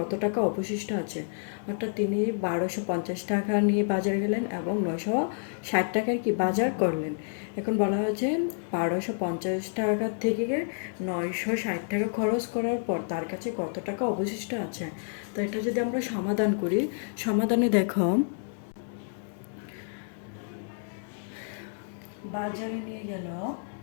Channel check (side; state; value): right; silent; digital silence